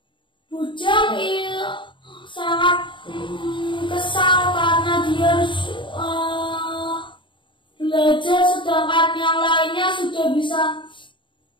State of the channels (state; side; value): late; right; 0.24 ms